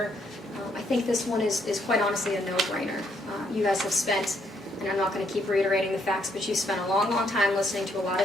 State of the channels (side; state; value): both; normal; correlation 0.72